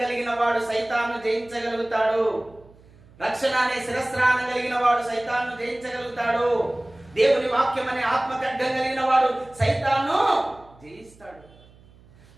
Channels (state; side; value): noise; right; hum, 26 dB below the sound